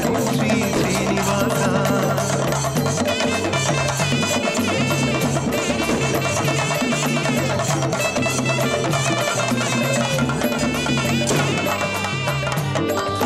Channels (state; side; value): noise; right; rumble, 26 dB below the sound